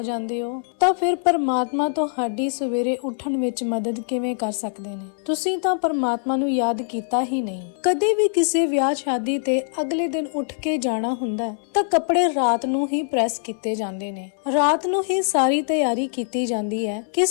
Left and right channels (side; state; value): right; silent; 63 dB below the other